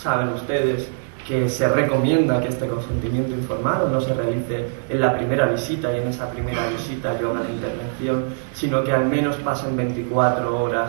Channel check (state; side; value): silent; left; 64 dB below the other